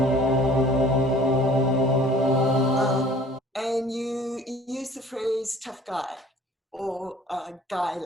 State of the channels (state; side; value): normal; both; correlation 0.50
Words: And you use the phrase tough guy or